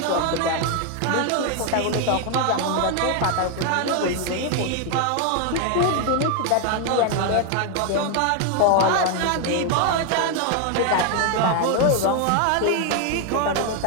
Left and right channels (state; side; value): different; both; correlation 0.01